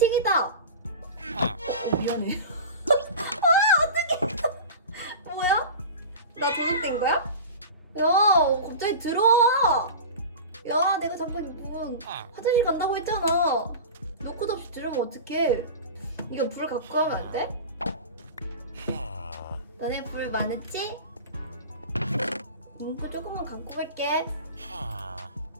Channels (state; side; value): inverted; both; correlation -0.32